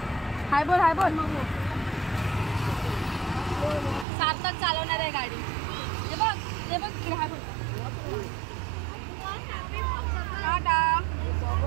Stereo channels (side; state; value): left; drops out; at 4.0 s